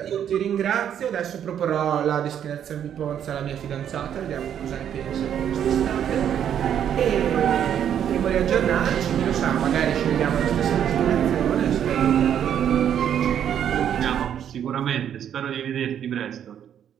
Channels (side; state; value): left; quieter; 9.4 dB